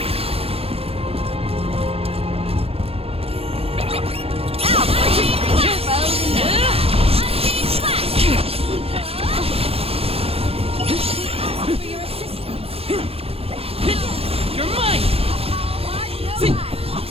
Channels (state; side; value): late; left; 0.28 ms